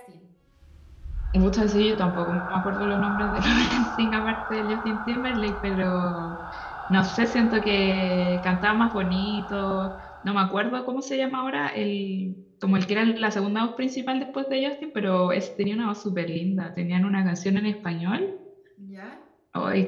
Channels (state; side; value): identical; both; correlation 1.00